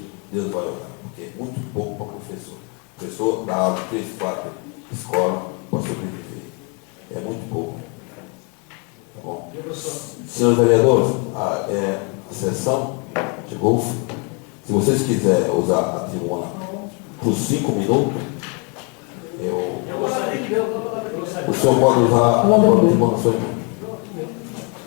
Deus vai olhar, porque é muito pouco para o professor. O professor dá aula 3, 4 escolas para sobreviver. É muito pouco. Tá bom? Senhores vereadores, a sessão chegou ao fim. Se vocês quiserem usar a tribuna por 5 minutos, o senhor pode usar a tribuna na sua mão.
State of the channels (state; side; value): quieter; right; 34.4 dB